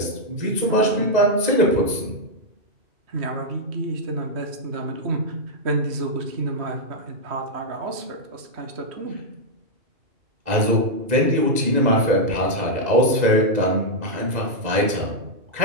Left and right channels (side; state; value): left; late; 2.0 ms